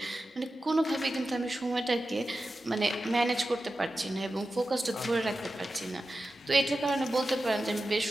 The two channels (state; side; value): normal; both; correlation 0.93